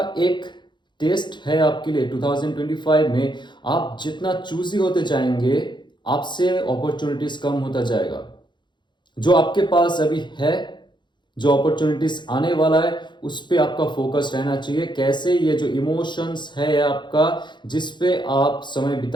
एक टेस्ट है आपके लिए। 2025 में आप जितना चूजी होते जाएंगे, आपसे अपॉर्चुनिटीज कम होता जाएगा। जो आपके पास अभी है, जो अपॉर्चुनिटीज आने वाला है, उस पे आपका फोकस रहना चाहिए। कैसे, ये जो इमोशंस है आपका, जिस पे आप समय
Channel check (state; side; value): late; right; 0.22 ms